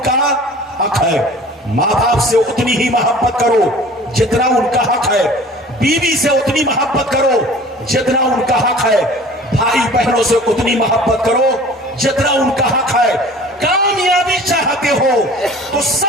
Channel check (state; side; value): normal; both; correlation 0.45